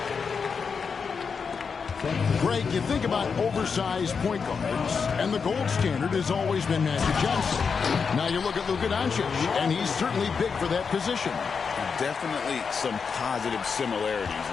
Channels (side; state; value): right; quieter; 5.7 dB